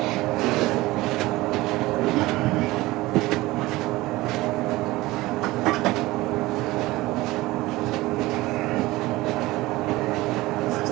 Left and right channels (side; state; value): left; quieter; 19.3 dB